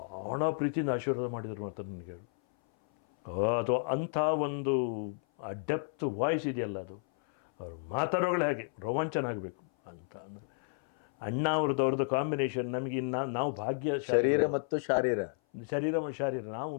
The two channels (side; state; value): right; silent; 56 dB below the other